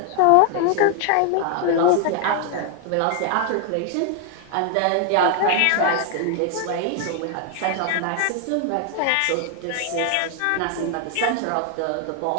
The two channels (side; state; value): both; different; correlation 0.00